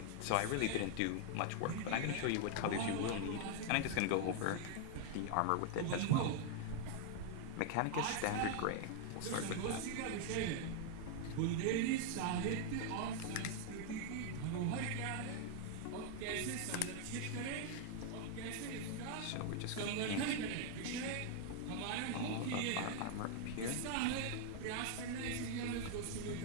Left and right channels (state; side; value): different; both; correlation 0.00